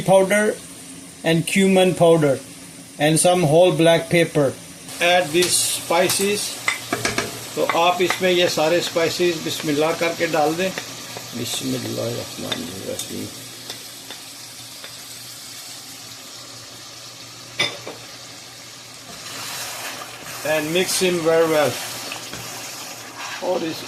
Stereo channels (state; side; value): identical; both; correlation 1.00